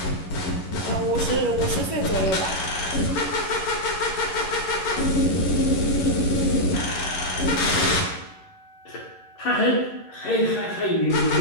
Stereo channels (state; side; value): late; right; 11 ms